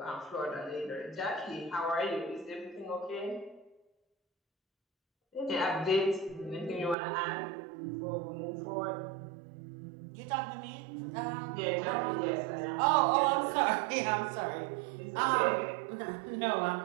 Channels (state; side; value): drops out; left; at 7.0 s